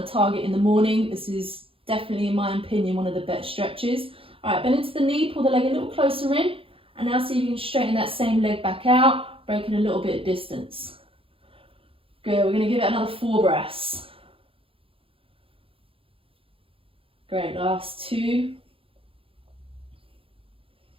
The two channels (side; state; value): left; late; 0.27 ms